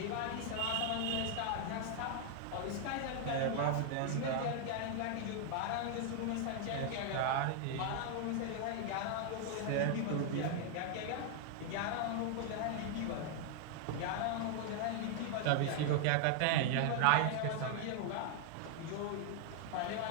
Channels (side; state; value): both; different; correlation 0.00